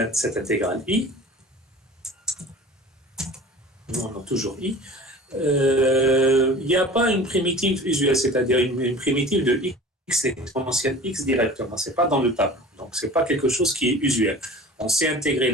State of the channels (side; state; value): both; normal; correlation 0.41